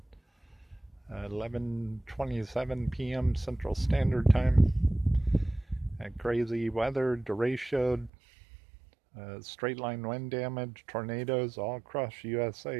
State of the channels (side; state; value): left; drops out; at 8.1 s